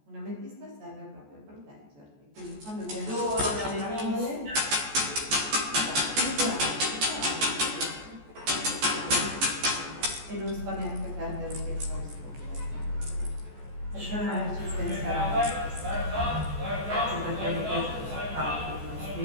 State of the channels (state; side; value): late; left; 14 ms